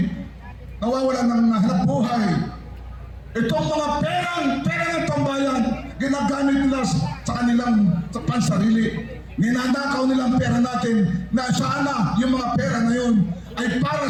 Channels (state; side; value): identical; both; correlation 1.00